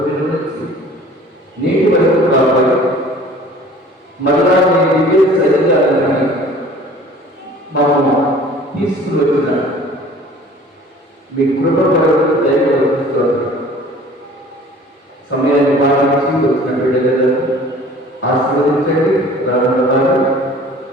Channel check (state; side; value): normal; both; correlation 0.48